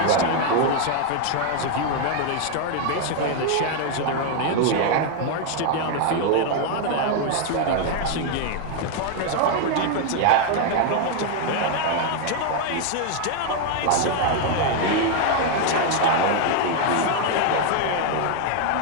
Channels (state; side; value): different; both; correlation 0.00